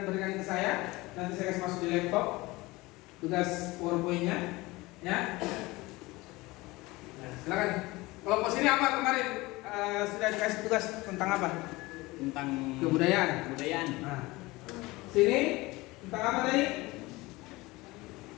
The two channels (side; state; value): right; quieter; 21.4 dB